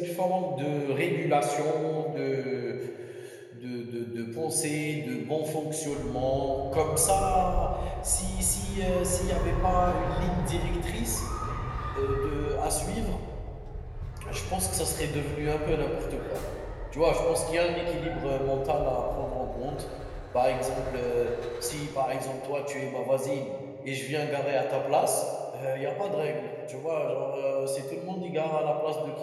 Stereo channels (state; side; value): identical; both; correlation 1.00